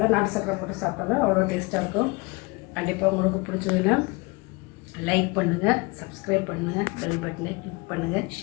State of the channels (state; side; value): quieter; right; 26.5 dB